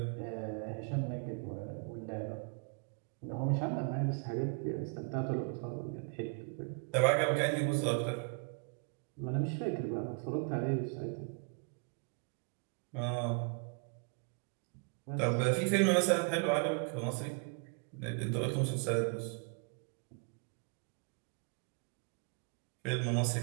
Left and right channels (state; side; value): quieter; left; 38.0 dB